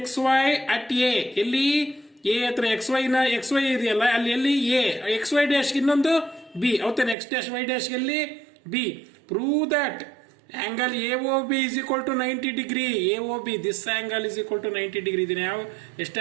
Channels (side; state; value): left; drops out; at 7.2 s